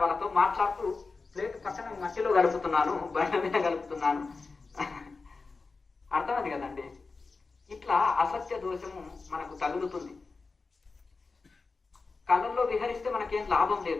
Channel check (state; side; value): quieter; right; 4.2 dB